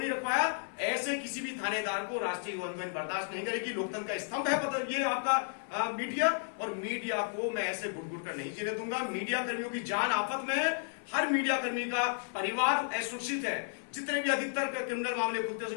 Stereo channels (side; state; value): right; silent; 56 dB below the other